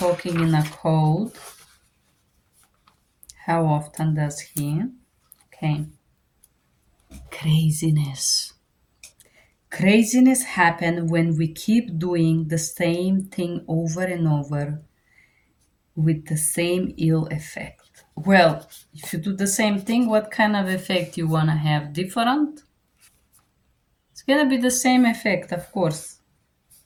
in a code? How often does he? Okay. Craziness. Craziness happens when we keep doing the same thing over and over with the same ill effect. Well, if you do the same thing, what kind of effect you want to have? Different? It's going to be the same effect, of course.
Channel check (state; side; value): identical; both; correlation 1.00